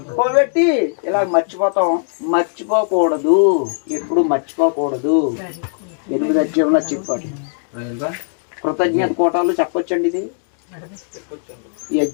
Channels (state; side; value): silent; right; digital silence